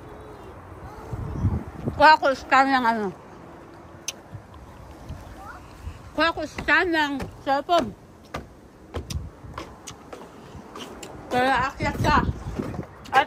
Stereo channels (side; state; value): both; identical; correlation 1.00